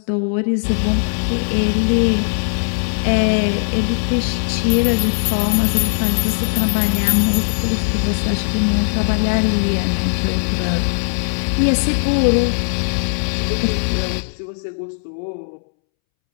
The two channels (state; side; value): silent; right; 67 dB below the other